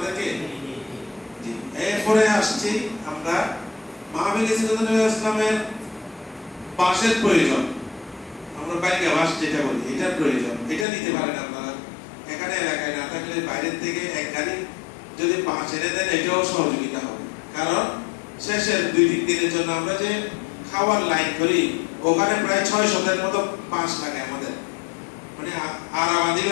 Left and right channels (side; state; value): right; drops out; at 10.9 s